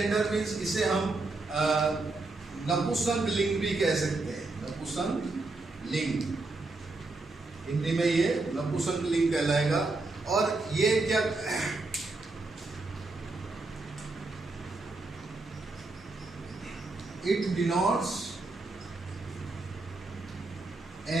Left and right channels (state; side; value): quieter; left; 3.3 dB